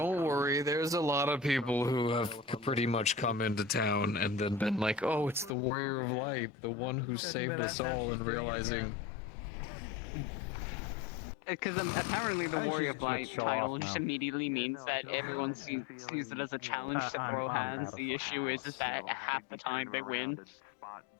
worry. There's a lot of people who have pretty much come into town and then been like, oh, it's the Warrior of Light, the one who saved us all, and realizing... Because apparently the I think Warrior she's of gonna Light show title off just now. immediately means that everyone sees it as a challenge to throw hands. The issue is that half the time they win.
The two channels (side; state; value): right; drops out; at 5.5 s